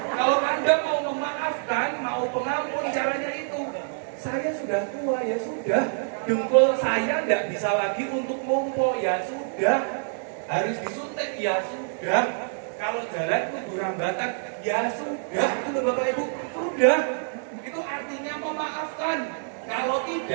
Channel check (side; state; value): left; silent; digital silence